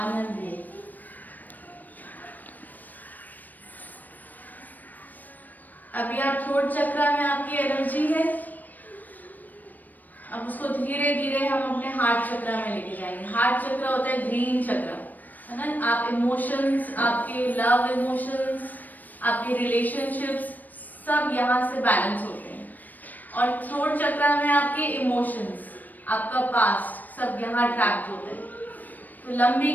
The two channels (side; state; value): right; late; 0.085 ms